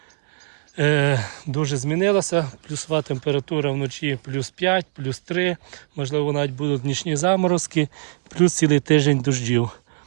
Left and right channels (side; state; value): left; silent; digital silence